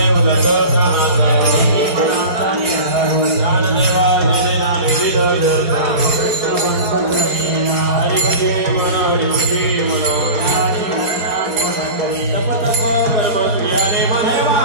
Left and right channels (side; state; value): left; late; 4.4 ms